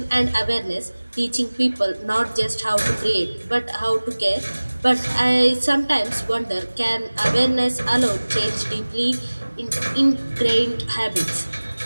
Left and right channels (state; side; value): inverted; both; correlation -1.00